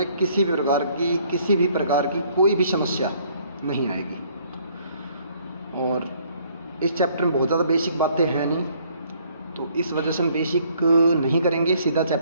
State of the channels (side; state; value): both; inverted; correlation -0.63